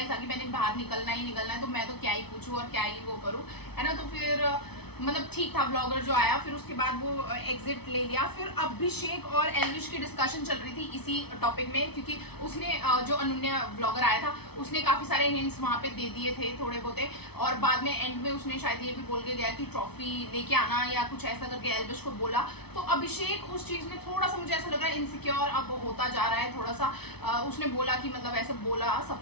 ही था कि मैंने बाहर निकलना है तो मैं तो क्या ही पूछूं और क्या ही वो करूं, है ना। तो फिर मतलब ठीक था ब्लॉगर जो आया, फिर उसके बाद वो एग्जिट ले लिया। फिर अभिषेक और एल्विश की डिस्कशन चल रही थी इसी टॉपिक में, क्योंकि उसने जो अनुन्या ब्लॉगर आया था उसने काफी सारे हिंट्स वहां पे दे दिए थे थोड़े बहुते, और बाद में एंड में उसने शायद ये भी बोल के गया कि ट्रॉफी लेके आना या कुछ ऐसा करके एल्विश को बोला। तो अभिषेक उस चीज में थोड़ा सा मुझे ऐसा लग रहा है इनसिक्योर अब होता जा रहा है थोड़ा सा। उसने बोला कि मतलब ऐसे बोला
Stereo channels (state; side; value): late; right; 0.98 ms